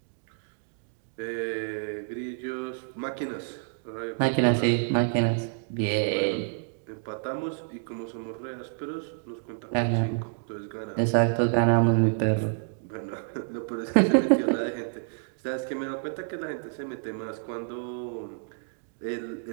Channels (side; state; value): left; silent; digital silence